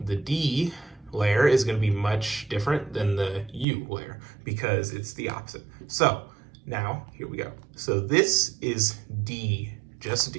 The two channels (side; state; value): left; drops out; at 3.7 s